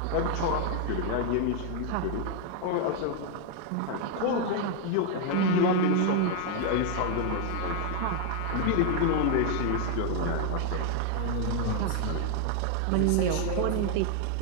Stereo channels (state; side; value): different; both; correlation 0.00